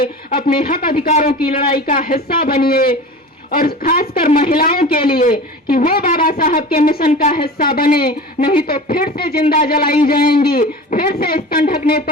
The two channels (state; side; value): normal; both; correlation 0.35